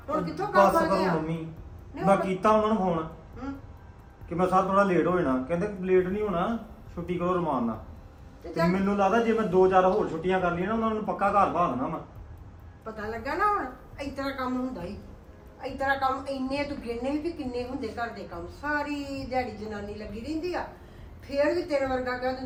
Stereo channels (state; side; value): identical; both; correlation 1.00